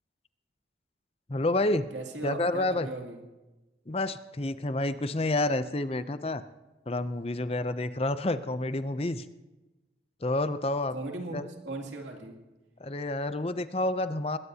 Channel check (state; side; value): normal; both; correlation 0.41